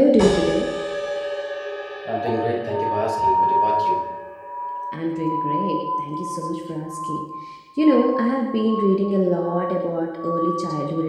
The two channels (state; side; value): identical; both; correlation 1.00